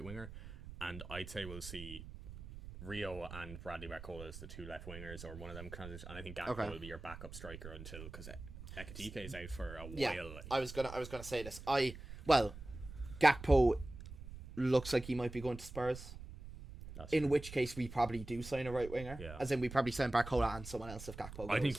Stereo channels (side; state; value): right; noise; rumble, 12 dB below the sound